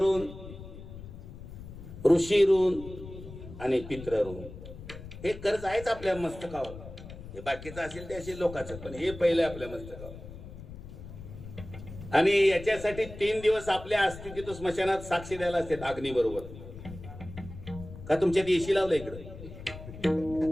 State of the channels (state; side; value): noise; left; rumble, 13 dB below the sound